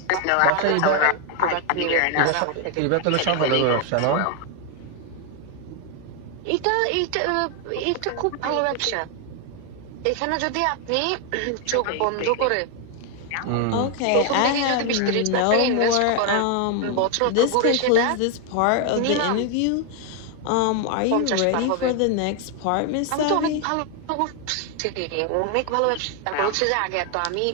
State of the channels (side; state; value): both; different; correlation 0.01